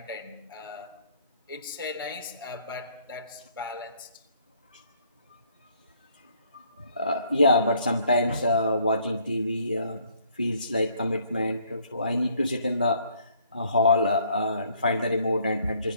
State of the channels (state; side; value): inverted; both; correlation -0.64